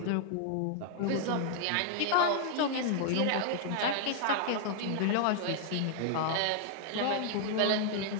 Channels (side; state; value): both; different; correlation -0.01